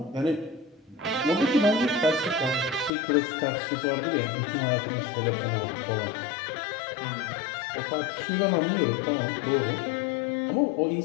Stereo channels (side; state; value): right; drops out; at 2.9 s